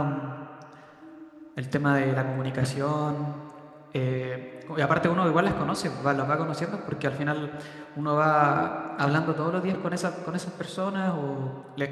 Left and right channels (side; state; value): both; identical; correlation 1.00